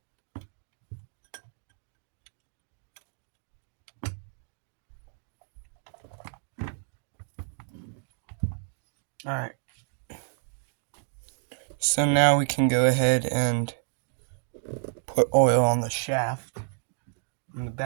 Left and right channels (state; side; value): silent; left; digital silence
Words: Alright. So now we can go ahead and put oil on the shaft. On the